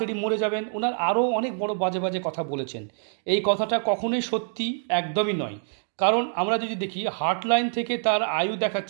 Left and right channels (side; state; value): left; silent; digital silence